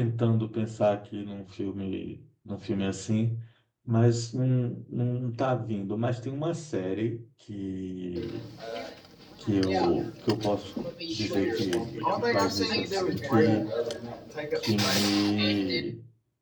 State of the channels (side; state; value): both; identical; correlation 1.00